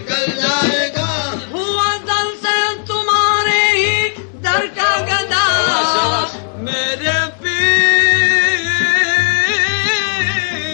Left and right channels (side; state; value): right; silent; digital silence